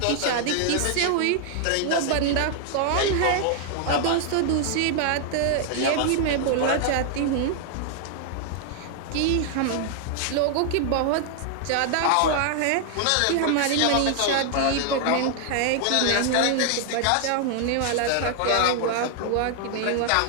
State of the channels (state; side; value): different; both; correlation 0.00